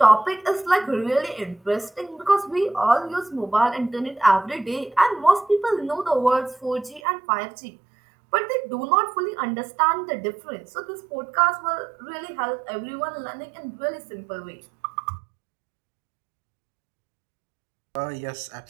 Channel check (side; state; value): left; drops out; at 7.0 s